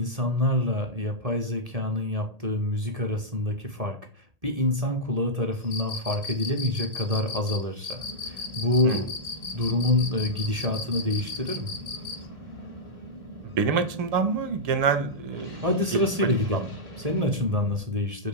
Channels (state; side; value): late; left; 1.8 ms